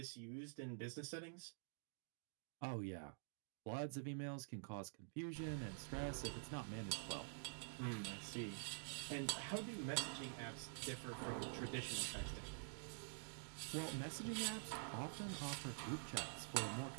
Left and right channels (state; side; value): silent; left; digital silence